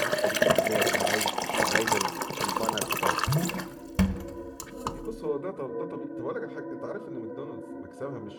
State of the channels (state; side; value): identical; both; correlation 1.00